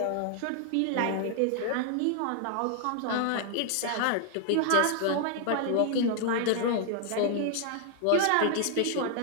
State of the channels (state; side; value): different; both; correlation 0.00